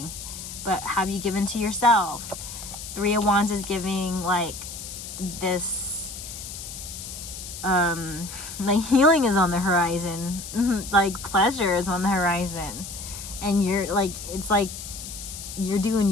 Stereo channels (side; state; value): left; noise; hiss, 10 dB below the sound